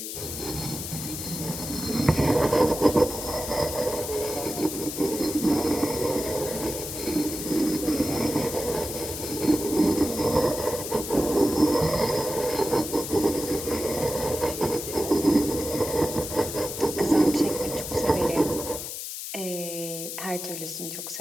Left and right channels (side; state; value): left; noise; hiss, 7 dB below the sound